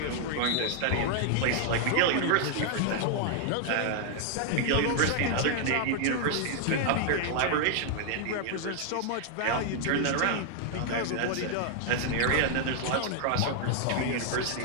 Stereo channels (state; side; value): different; both; correlation 0.00